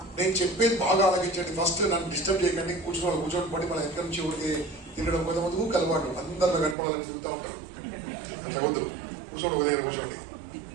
నేను చెప్పేది బాగా ఆలోచించండి. ఫస్ట్ నన్ను డిస్టర్బ్ చేయకండి. కూర్చోని పడి మన ఎక్కడి నుంచి ఊరికి తిరగడం కొంతమంది అలవాటు, అందరిలో కనపడాలని తిరుగుతూ ఉంటారు. అట్లా వద్దు, కూర్చోండి, ఉదయం కూర్చోండి.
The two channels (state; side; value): drops out; left; at 6.8 s